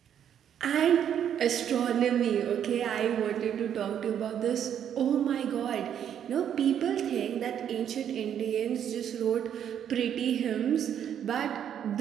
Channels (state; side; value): quieter; left; 9.3 dB